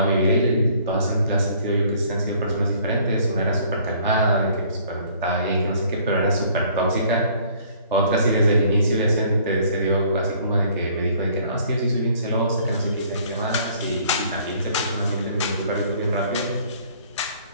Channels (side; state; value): both; inverted; correlation -0.58